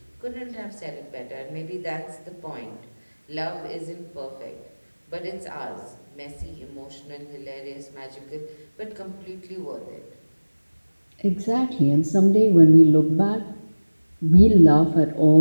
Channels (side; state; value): both; inverted; correlation -1.00